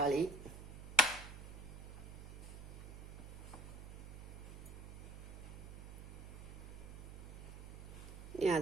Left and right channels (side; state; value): right; noise; hum, 11 dB below the sound